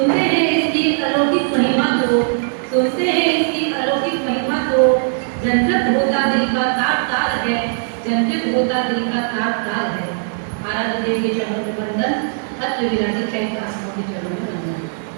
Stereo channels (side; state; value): left; silent; digital silence